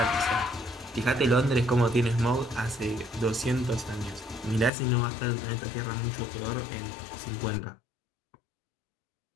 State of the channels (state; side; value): drops out; right; at 4.7 s